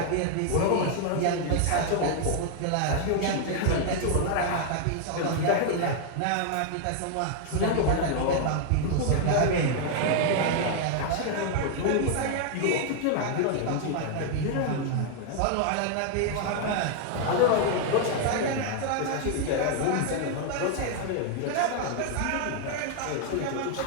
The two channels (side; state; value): both; different; correlation 0.00